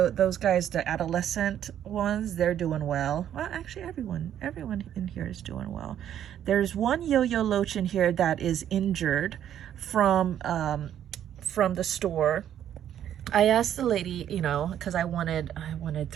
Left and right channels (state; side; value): quieter; left; 10.4 dB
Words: guys, the adolescent ones, they're doing well. Well, actually everyone in here is doing well. There's one yo-yo loach in here that is injured from the store. I asked the lady, you know, because I wanted